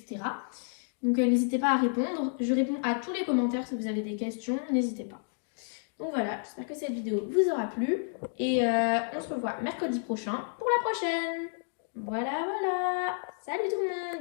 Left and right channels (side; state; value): right; silent; 58 dB below the other